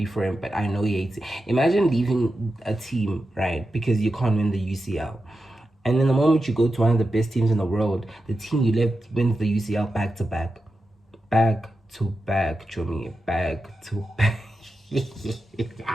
for him, but I know he hates it. Imagine leaving a team, right, because you can't win the UCL. And then the moment you go to one of the best teams in the world, the team you left wins the UCL back to back. Back to back, Chomi. Back to back.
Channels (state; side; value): normal; both; correlation 0.90